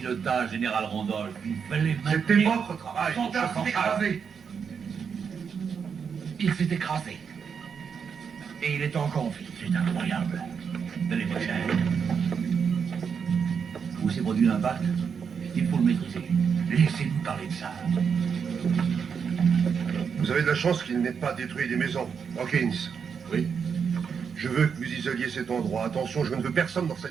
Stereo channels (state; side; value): quieter; left; 6.6 dB